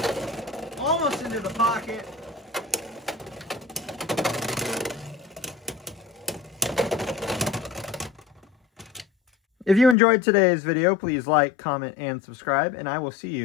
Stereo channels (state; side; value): drops out; right; at 10.0 s